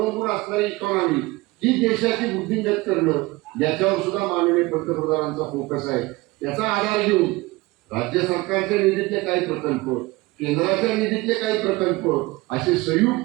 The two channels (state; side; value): quieter; left; 21.6 dB